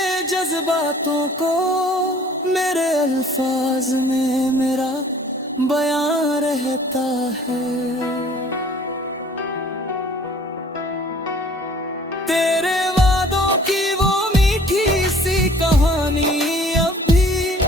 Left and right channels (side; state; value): both; normal; correlation 0.53